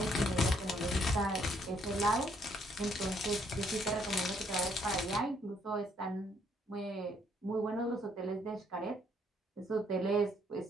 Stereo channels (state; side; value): normal; both; correlation 0.69